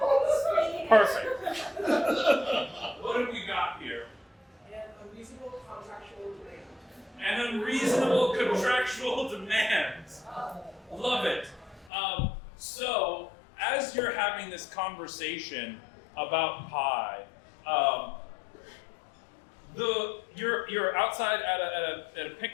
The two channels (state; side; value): drops out; right; at 11.9 s